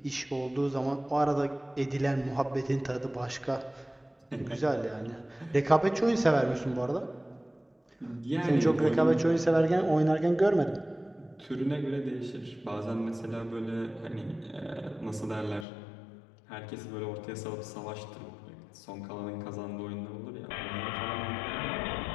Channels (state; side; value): drops out; right; at 15.7 s